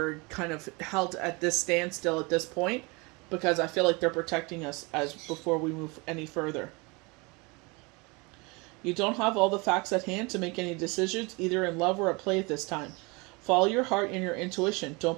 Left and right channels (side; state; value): left; quieter; 27.5 dB